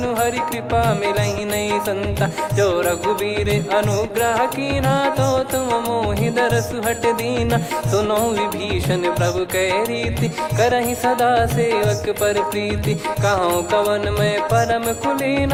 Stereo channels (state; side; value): identical; both; correlation 1.00